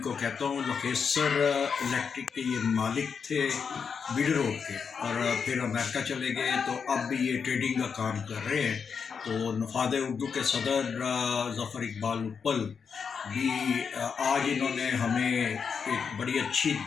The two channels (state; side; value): quieter; right; 6.2 dB